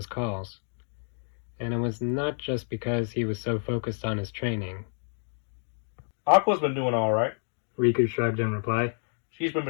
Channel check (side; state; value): right; silent; 59 dB below the other